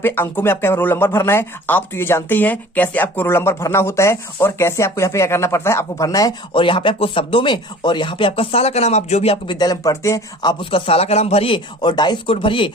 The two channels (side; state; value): both; normal; correlation 0.46